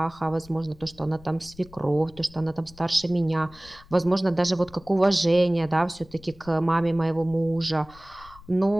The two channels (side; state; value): left; noise; rumble, 22 dB below the sound